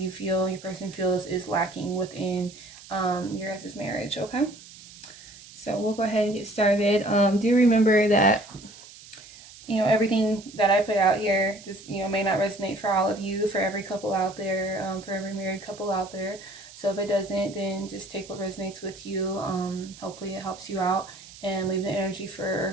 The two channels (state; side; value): noise; right; hiss, 19 dB below the sound